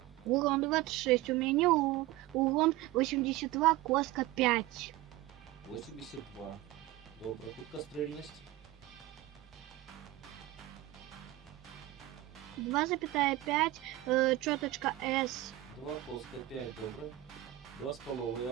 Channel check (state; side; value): quieter; left; 16.7 dB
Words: Урон 26. У меня урон 82, коска 5. 82. Добре, худкострільність. 2,5, чёточка S. 2, коска 5, добре. 2,5,